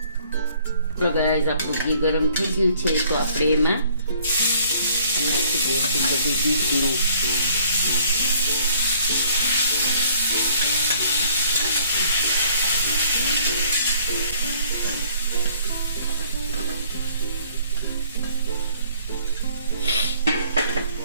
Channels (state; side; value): inverted; both; correlation -0.58